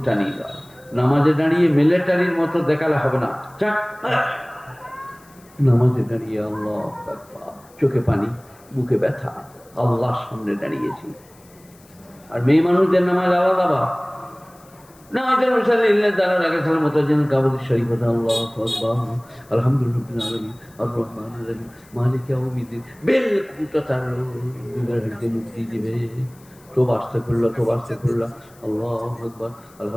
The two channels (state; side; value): noise; left; hiss, 28 dB below the sound